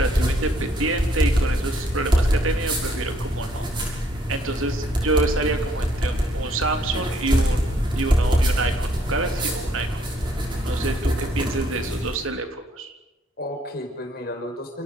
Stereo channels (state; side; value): normal; both; correlation 0.67